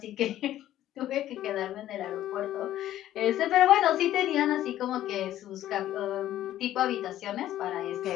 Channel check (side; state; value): right; quieter; 12.9 dB